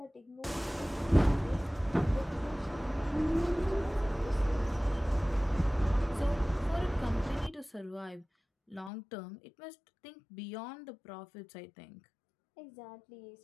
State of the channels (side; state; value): right; drops out; at 8.9 s